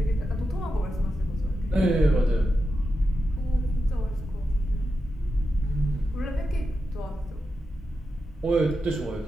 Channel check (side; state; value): both; normal; correlation 0.89